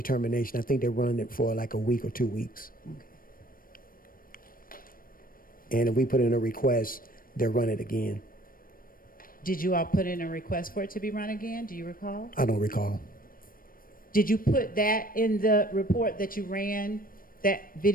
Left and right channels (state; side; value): late; right; 0.41 ms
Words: I think they run it for like a week or 2 weeks. And if we put in a request, they'll run it again. Did you all put in a request for it to be run again? Do you recall? I don't recall. Did you put that in the report that you ran, that